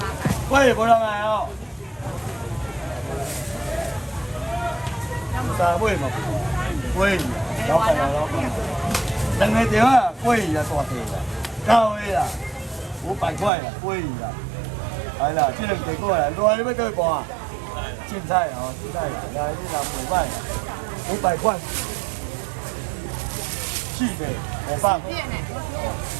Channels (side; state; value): left; drops out; at 13.5 s